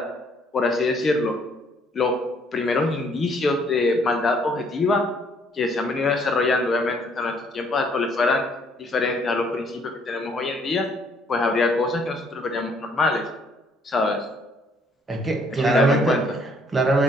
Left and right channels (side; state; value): both; normal; correlation 0.64